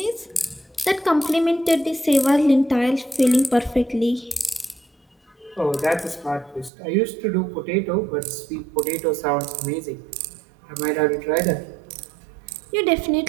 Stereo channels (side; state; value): left; drops out; at 6.7 s